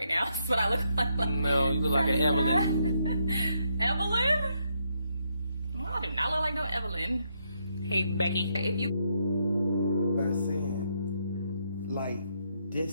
now, that's what I look like. No, you look like an Evelyn. Evelyn? Well, I do not look like no Evelyn. Hey, Becky. If you by saying, like,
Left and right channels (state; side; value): inverted; both; correlation -0.77